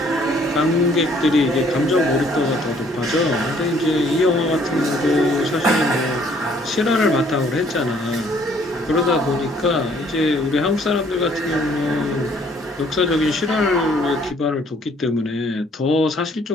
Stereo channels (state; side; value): normal; both; correlation 0.62